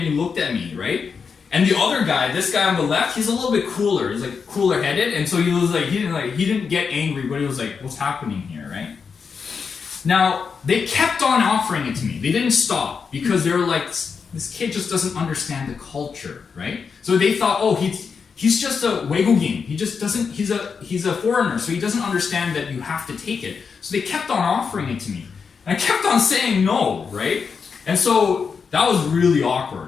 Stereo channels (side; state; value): right; quieter; 5.8 dB